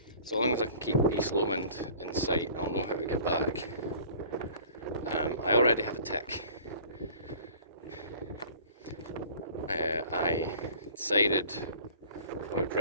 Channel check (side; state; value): both; inverted; correlation -0.46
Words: so long as I can keep East Lomond in sight, I'll know how to get back. I already have a tick. I decided I would